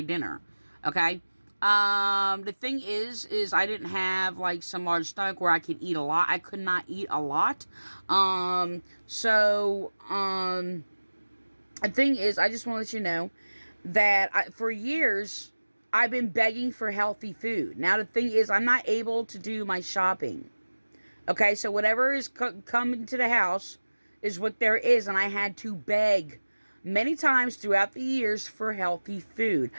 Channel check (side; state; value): both; inverted; correlation -1.00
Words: Okay? The thing is I didn't have like some large stomach where I could eat a lot. I could not eat a lot. The thing is, I just want to let you know that for years, I've been begging for healthy food. Now, the thing is, I'm not able to do my shopping. Okay, so whatever is coming to the house is what there is, and I had to beg many times throughout the years for healthy food.